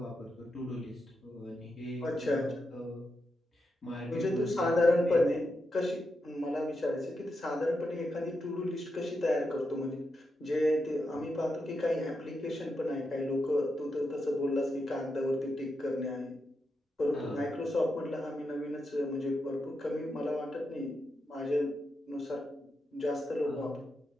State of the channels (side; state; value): both; normal; correlation 0.85